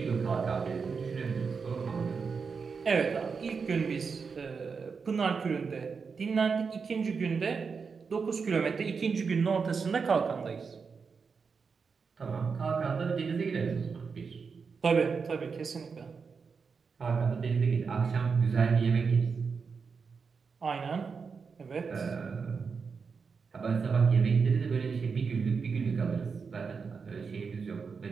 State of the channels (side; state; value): left; quieter; 5.4 dB